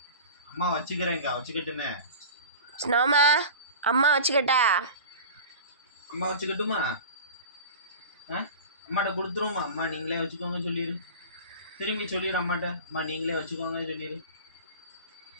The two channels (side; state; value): both; inverted; correlation -0.36